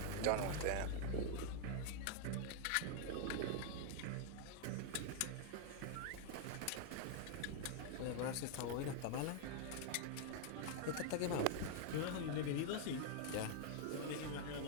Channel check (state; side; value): different; both; correlation 0.00